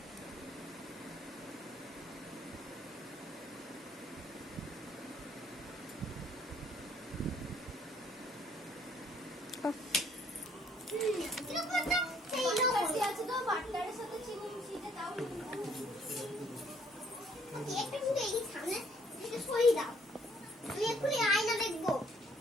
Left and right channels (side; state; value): both; normal; correlation 0.64